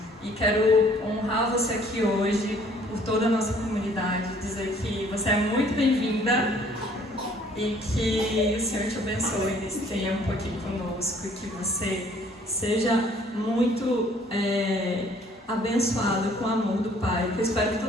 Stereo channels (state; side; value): normal; both; correlation 0.58